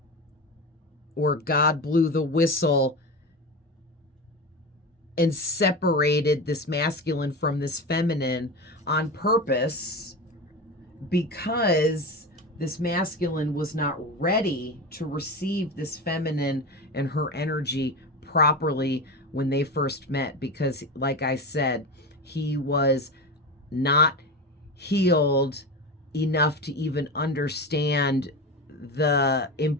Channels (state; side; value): normal; both; correlation 0.23